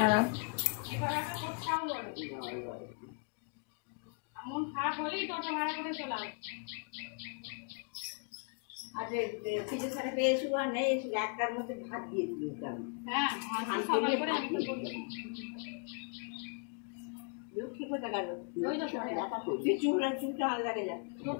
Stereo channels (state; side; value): quieter; right; 33.0 dB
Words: লক্ষ্মী কোথায় গেল? চুলটা ভালো লাগে যা